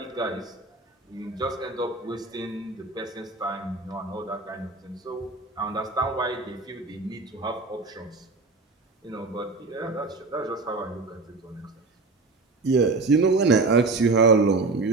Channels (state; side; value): quieter; left; 3.6 dB